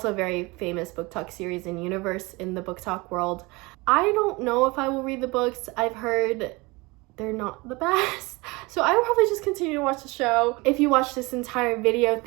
a very famous book talk series in universe in the book talk world. I don't know if I will read the books. I've heard they're not the best, so I will probably just continue to watch the show. If you watched this entire video,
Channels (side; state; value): left; quieter; 24.6 dB